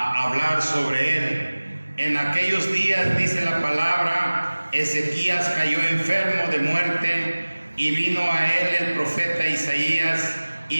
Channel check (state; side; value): inverted; both; correlation -1.00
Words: sobre él. En aquellos días, dice la palabra, Ezequías cayó enfermo de muerte, y vino a él el profeta Isaías,